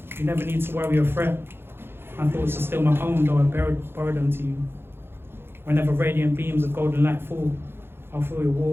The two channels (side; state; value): left; late; 0.11 ms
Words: You never need to worry or fret. My thoughts are still my own, though I borrowed them to you. Whenever radiant beams of golden light fall, I'll feel your